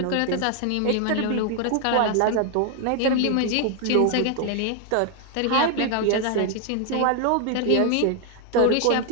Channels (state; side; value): different; both; correlation 0.00